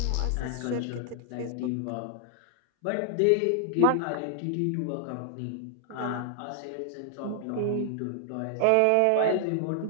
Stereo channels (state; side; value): different; both; correlation 0.00